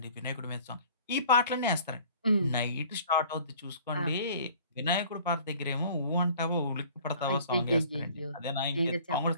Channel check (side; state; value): both; inverted; correlation -0.50